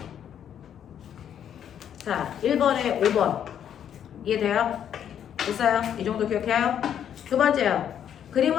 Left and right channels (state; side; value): quieter; right; 9.3 dB